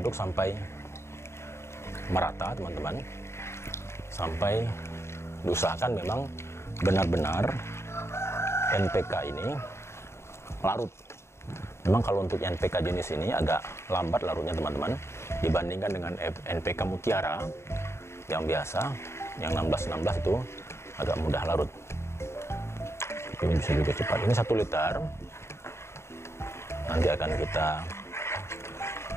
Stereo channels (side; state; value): right; late; 0.13 ms